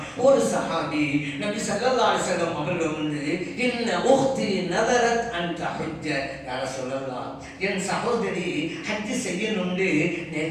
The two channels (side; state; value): both; identical; correlation 1.00